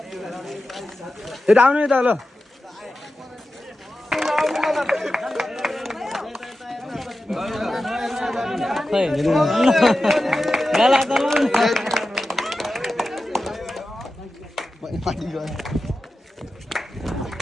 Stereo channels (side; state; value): both; normal; correlation 0.93